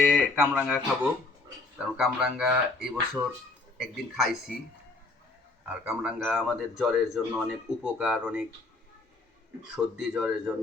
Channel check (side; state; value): right; quieter; 3.4 dB